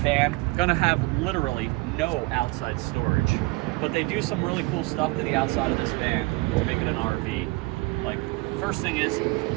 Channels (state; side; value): quieter; left; 24.4 dB